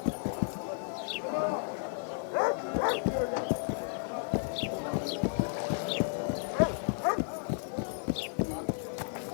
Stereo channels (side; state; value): right; silent; 56 dB below the other